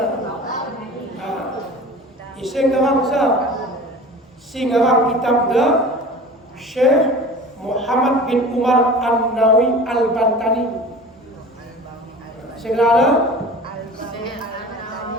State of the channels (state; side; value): normal; both; correlation 0.38